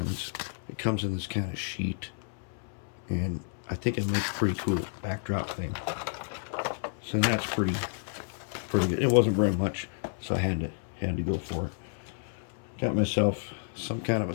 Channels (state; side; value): silent; right; 57 dB below the other